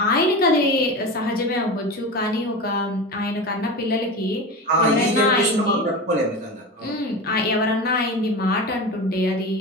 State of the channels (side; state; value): both; normal; correlation 0.26